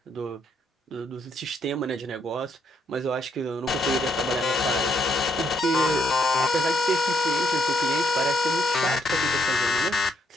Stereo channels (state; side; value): normal; both; correlation 0.73